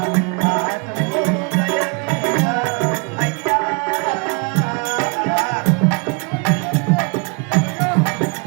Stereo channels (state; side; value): quieter; left; 32.2 dB